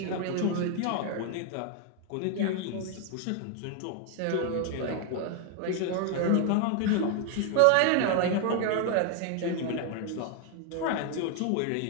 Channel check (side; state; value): both; different; correlation 0.01